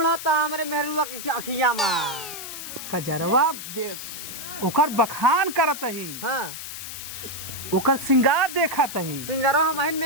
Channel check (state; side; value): noise; left; hiss, 9 dB below the sound